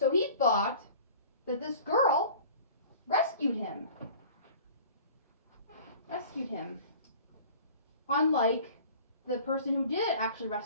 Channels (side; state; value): both; inverted; correlation -0.45